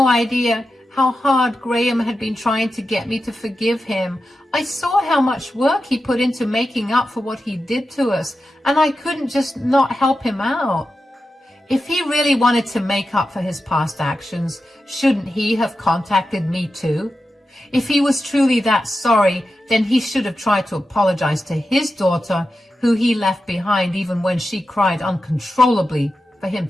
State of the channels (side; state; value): both; normal; correlation 0.91